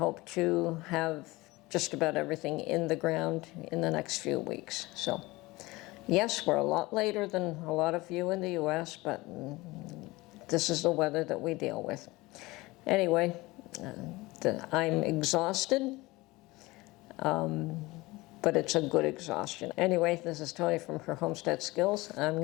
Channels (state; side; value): quieter; right; 21.2 dB